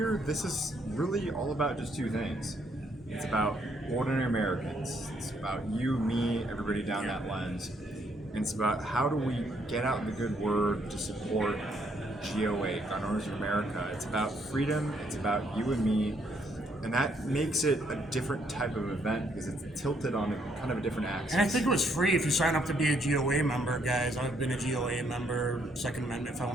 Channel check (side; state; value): both; normal; correlation 0.71